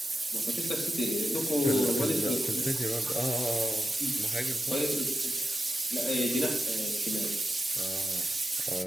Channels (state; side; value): normal; both; correlation 0.91